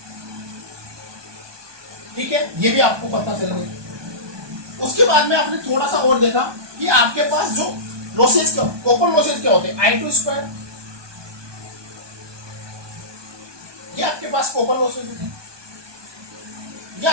ठीक है, ये भी आपको पता चल गया। उसके बाद में आपने थोड़ा सा और देखा कि आपके पास जो लॉसेज, कॉपर लॉसेज क्या होते हैं? I2 स्क्वायर, ये आपके पास कॉपर लॉसेज होते हैं, ये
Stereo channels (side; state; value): left; late; 1.2 ms